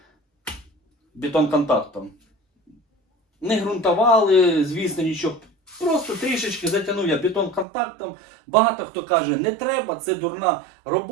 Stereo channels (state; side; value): drops out; left; at 7.7 s